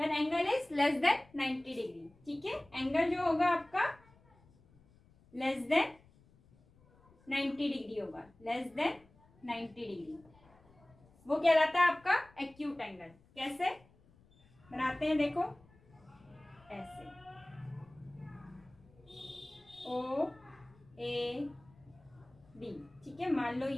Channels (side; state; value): left; noise; rumble, 28 dB below the sound